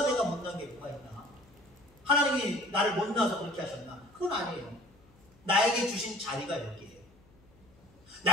내가 못난 게 뭐가 있나? 하나님이 나를 못나서 그렇게 하셨나? 그건 아니에요. 나에게 주신 자리가 여기에요.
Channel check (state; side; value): noise; left; hum, 28 dB below the sound